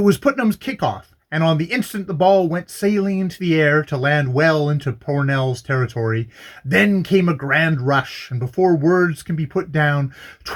Putnam's kickoff, and on the instant the ball went sailing into the air to land well into Pornell's territory. Then came a grand rush, and before words can be put down,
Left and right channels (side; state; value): both; identical; correlation 1.00